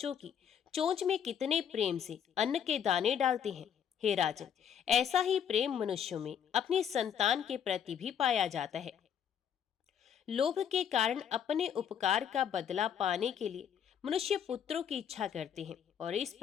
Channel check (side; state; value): right; quieter; 8.6 dB